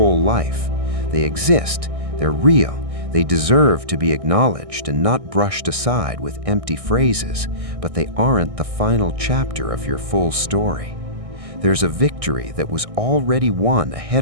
life. They exist, they're real, they deserve to be acknowledged and not brushed aside with empty phrases, but they aren't the final chapter of your full story. There's a victory that was already won ahead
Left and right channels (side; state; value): left; late; 1.6 ms